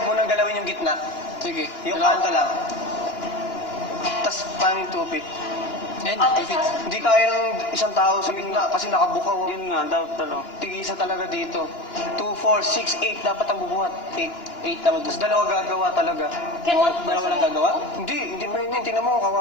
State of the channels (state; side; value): late; right; 2.9 ms